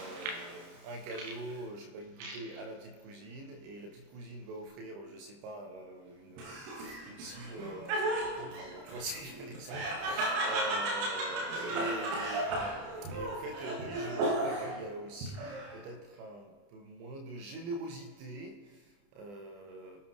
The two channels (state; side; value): late; left; 30 ms